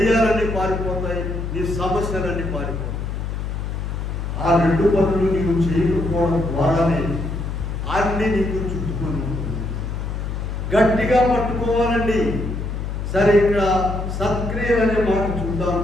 పారిపోతాయి, నీ సమస్యలన్నీ పారిపోతాయి. ఆ 2 పనులు నీవు చేయకపోవడం ద్వారానే అన్ని నీకు చుట్టుకొని ఉంటుంది. గట్టిగా పట్టుకోవాలండి. సరే, ఇక్కడ సత్క్రియలు అనే మాట చూద్దాం.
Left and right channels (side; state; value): left; noise; hum, 4 dB below the sound